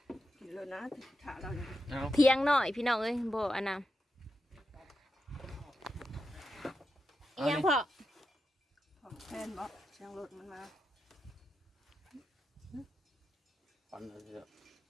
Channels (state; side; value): normal; both; correlation 0.88